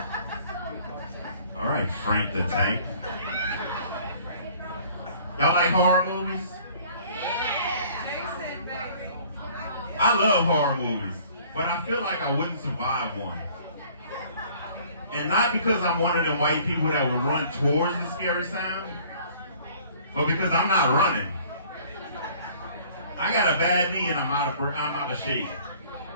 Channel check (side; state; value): both; inverted; correlation -0.53